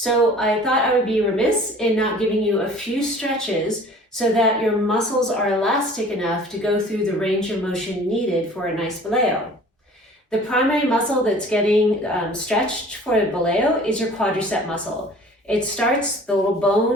I thought I would be remiss in not giving you a few stretches so that your muscles are elastic enough to go through the range of motion needed for a nice Boleo. The primary muscle that's getting stretched for a Boleo is your quadricep muscle. It starts the little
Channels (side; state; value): both; normal; correlation 0.47